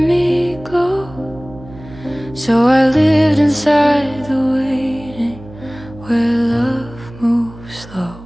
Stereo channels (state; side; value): noise; right; hum, 18 dB below the sound